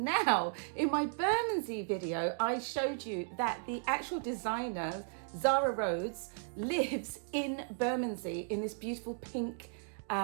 in my Bermondsey video, I showed you that the actual designer, Zara Rhodes, lives in Bermondsey in this beautiful pink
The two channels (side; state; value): left; silent; digital silence